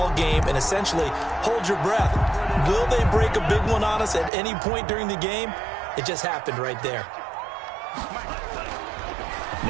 game and essentially hold your breath. Will they break a big one on us at any point during the game? It just happened right there.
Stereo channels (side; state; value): left; drops out; at 4.3 s